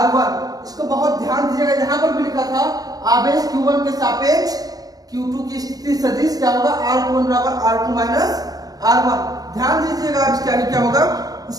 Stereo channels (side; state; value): left; late; 0.18 ms